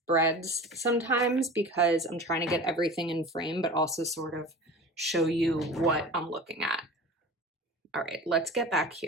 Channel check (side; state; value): both; normal; correlation 0.36